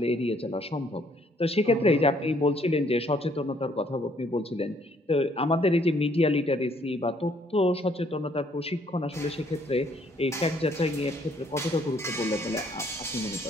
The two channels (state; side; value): normal; both; correlation 0.65